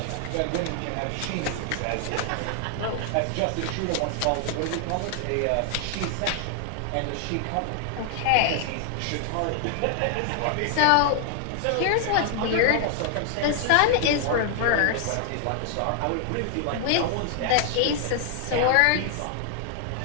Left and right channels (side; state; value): both; different; correlation 0.00